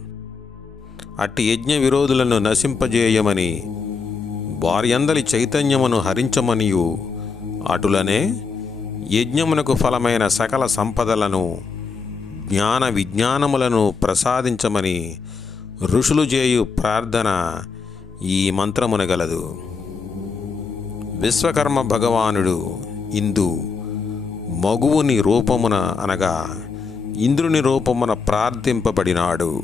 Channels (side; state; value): right; quieter; 5.0 dB